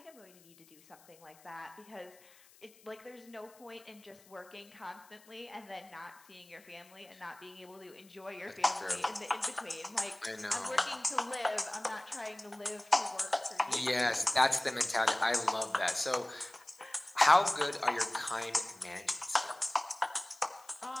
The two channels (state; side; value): noise; left; hiss, 26 dB below the sound